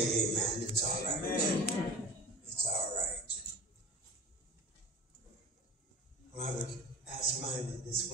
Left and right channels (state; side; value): normal; both; correlation 0.40